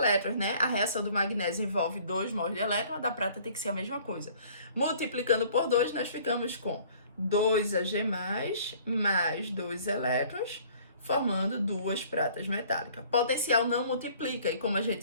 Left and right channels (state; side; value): inverted; both; correlation -0.54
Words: né? A reação do magnésio envolve 2 mols de elétron, a da prata tem que ser a mesma coisa. Multiplicando por 2, nós ficamos com 2Ag+, mais 2 elétrons, formando 2 pratas metálicas. Potencial não multiplica, e como a